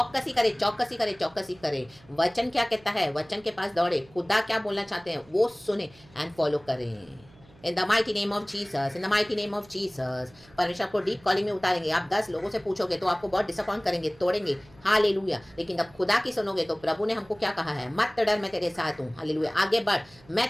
करे, चौकसी करे, चौकसी करे। वचन क्या कहता है, वचन के पास दौड़े। खुदा क्या बोलना चाहते हैं वो सुने एंड फॉलो करें। इन the mighty name of Jesus, in the mighty name of Jesus. परमेश्वर आपको डीप कॉलिंग में उतारेंगे। आप 10 लोगों से पूछोगे तो आपको बहुत डिसअपॉइंट करेंगे, तोड़ेंगे। हालेलुया। लेकिन जब खुदा की सुनोगे तो प्रभु ने हमको क्या कहा है? मत डर, मैं तेरे साथ हूँ। हालेलुया। आगे बढ़, मैं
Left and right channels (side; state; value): right; noise; hum, 26 dB below the sound